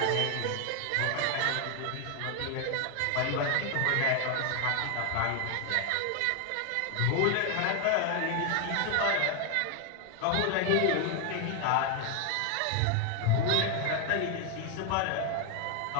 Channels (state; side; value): different; both; correlation 0.01